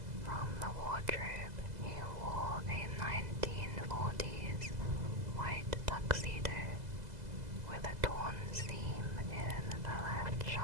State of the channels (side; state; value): left; late; 2.0 ms